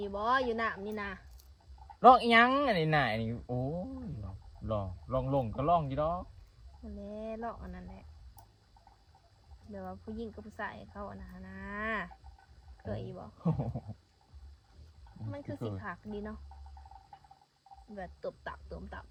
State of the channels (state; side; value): identical; both; correlation 1.00